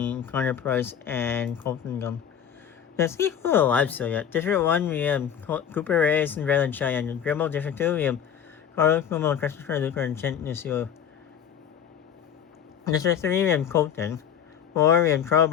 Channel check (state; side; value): quieter; right; 8.7 dB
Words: Connor Price, and Colton Gum. There's equal alive still yet. District 1, we have Cooper Reyes and Raylan Cheyenne. Dribble District 2, we have Carlos Cuomo, Christopher Luker, and Chent Nusio. District 3, we have Colton. 4, we have Charles